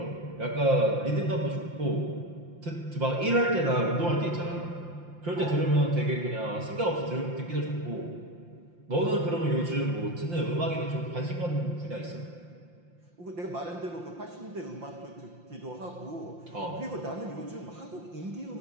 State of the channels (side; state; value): left; late; 5.8 ms